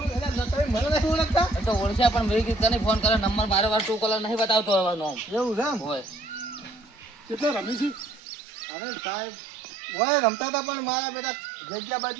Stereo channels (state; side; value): drops out; left; at 8.2 s